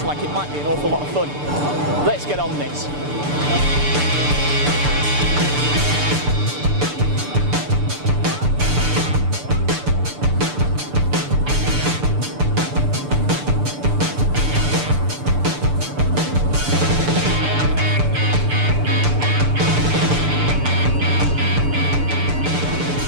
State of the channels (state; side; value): late; left; 6.8 ms